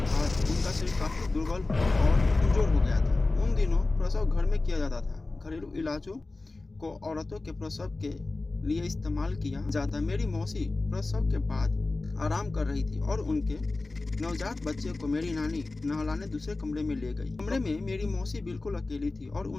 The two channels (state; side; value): quieter; right; 3.3 dB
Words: बाद उनका शरीर काफी दुर्बल और कमजोर हो गया था। उन दिनों प्रसव घर में किया जाता था। घरेलू इलाजों को औरतों के प्रसव के लिए इस्तेमाल किया जाता। मेरी मौसी प्रसव के बाद आराम कर रही थी और उनके नवजात बच्चे को मेरी नानी नहलाने दूसरे कमरे में ले गई। कमरे में मेरी मौसी बिल्कुल अकेली थी और